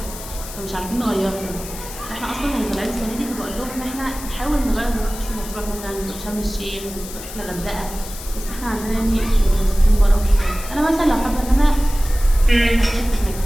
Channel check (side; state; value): left; noise; hiss, 12 dB below the sound